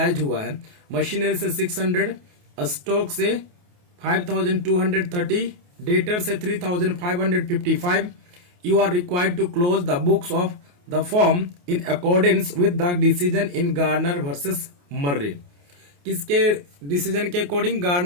हुआ है। मशीनरी से 600, स्टॉक से 5230, डेटर से 3555, you are required to close the books of the firm in accordance with the decision in Garner versus Murray. किसके डिसीजन के अकॉर्डिंग?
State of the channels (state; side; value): late; left; 28 ms